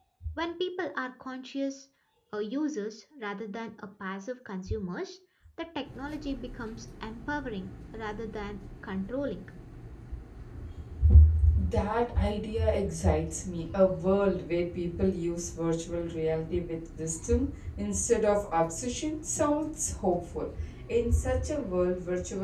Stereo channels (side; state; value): both; identical; correlation 1.00